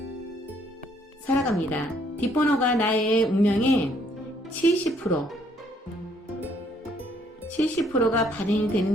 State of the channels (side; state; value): both; normal; correlation 0.66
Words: 살아갑니다. 뒷번호가 나의 운명의 70%가 발현이